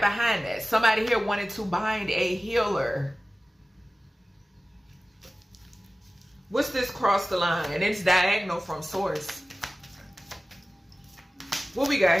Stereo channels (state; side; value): normal; both; correlation 0.97